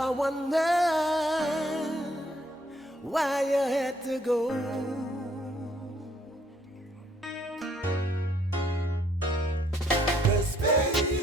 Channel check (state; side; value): normal; both; correlation 0.66